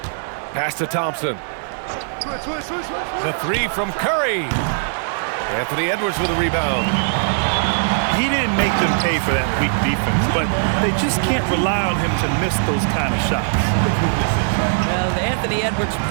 Pass to Thompson. The 3 from Curry. Anthony Edwards with a rebound. He didn't make them pay for that weak defense, but they just can't rely on him to miss those kind of shots. Well, Anthony Edwards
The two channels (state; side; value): silent; left; 62 dB below the other